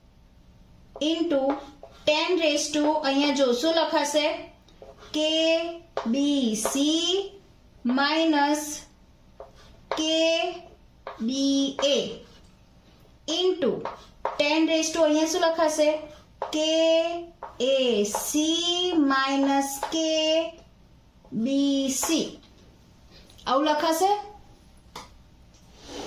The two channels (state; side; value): identical; both; correlation 1.00